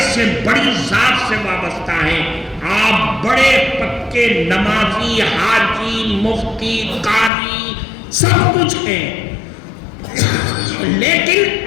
سے بڑی ذات سے وابستہ ہیں، آپ بڑے پکے نمازی، حاجی، مفتی، قاضی سب کچھ ہیں،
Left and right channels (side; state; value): right; drops out; at 7.3 s